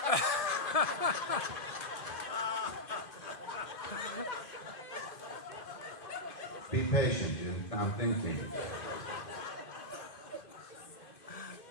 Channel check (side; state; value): right; late; 2.5 ms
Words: Be patient, Jim. I'm thinking.